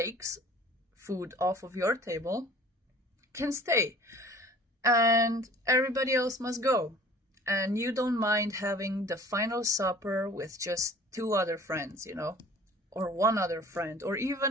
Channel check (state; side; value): normal; both; correlation 0.48